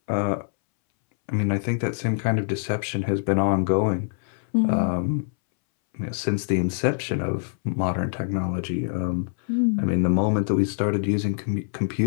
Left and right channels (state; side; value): silent; right; 62 dB below the other